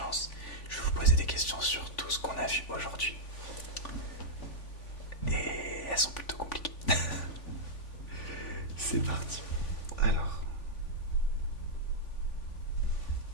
je vais vous poser des questions sur tout ce qu'on a vu aujourd'hui. Et elles sont plutôt compliquées. C'est parti. Alors.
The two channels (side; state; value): right; late; 3.5 ms